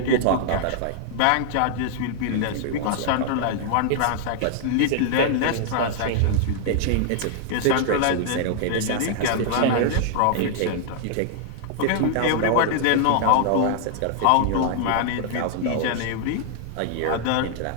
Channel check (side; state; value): both; different; correlation -0.01